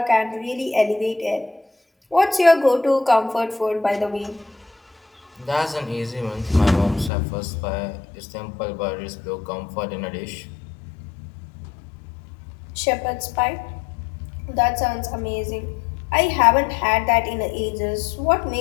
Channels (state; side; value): drops out; right; at 7.1 s